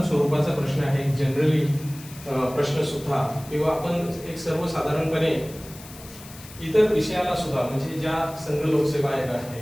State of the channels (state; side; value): noise; left; hiss, 18 dB below the sound